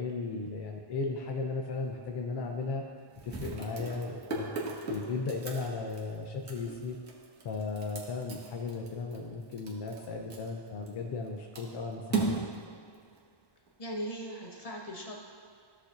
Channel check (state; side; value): late; right; 1.1 ms